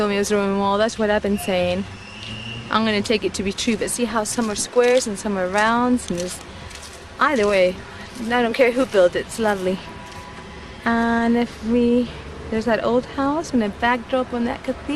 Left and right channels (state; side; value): identical; both; correlation 1.00